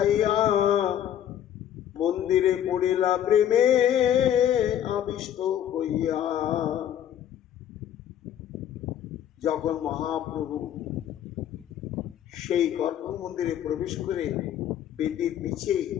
মন্দিরে পড়িলা প্রেমে আবিষ্ট হইয়া। যখন মহাপ্রভু সেই গর্ভ মন্দিরে প্রবেশ করে বেদির নিচে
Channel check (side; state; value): right; quieter; 10.5 dB